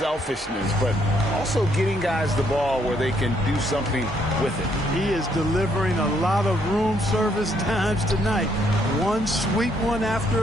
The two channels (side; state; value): both; normal; correlation 0.71